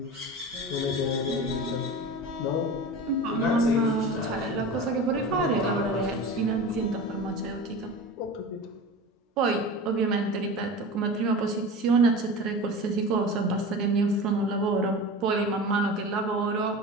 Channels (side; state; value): both; normal; correlation 0.32